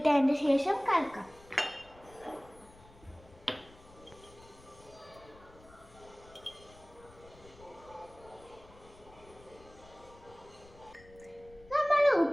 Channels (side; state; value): left; noise; rumble, 23 dB below the sound